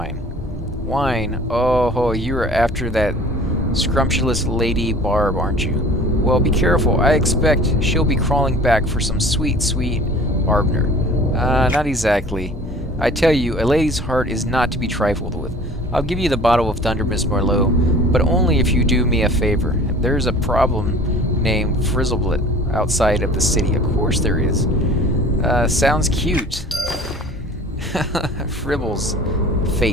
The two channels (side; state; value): both; normal; correlation 0.46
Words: Wine? Oh, you're after that scrumptious Lady Barb, aren't you? Well, be careful. I expect she'll be crawling back for some sweet, sweet Arbner. Not exactly. I tell you, a lady's heart is not to be trifled with. I'll give you the bottle of Thundermist Merlot, but only if you do me a favor. There's a problem named Frizzleblit outside of the city. Of course there is. Sounds cute. Fribbles.